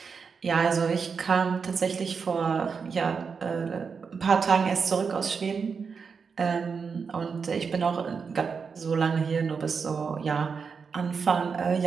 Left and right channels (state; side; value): quieter; left; 5.6 dB